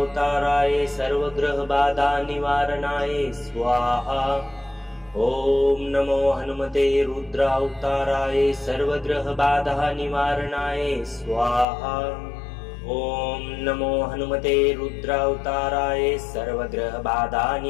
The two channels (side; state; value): right; drops out; at 11.7 s